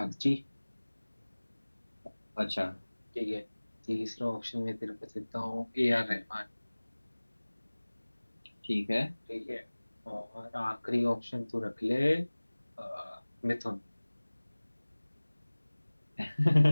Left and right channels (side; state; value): both; inverted; correlation -1.00